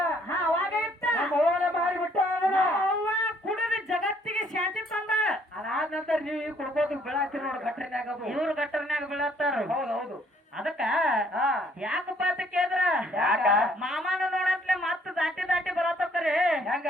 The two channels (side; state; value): both; normal; correlation 0.64